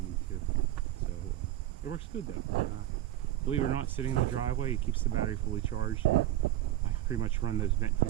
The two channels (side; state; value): left; quieter; 14.3 dB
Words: need to. So it works good though. Believe it or not, sitting in the driveway, it keeps the battery fully charged, and I pretty much run those vent